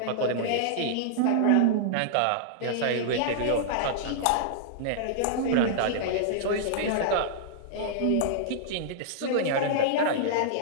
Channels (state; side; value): different; both; correlation -0.02